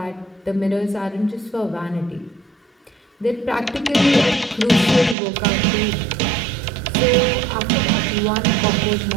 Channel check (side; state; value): left; drops out; at 5.2 s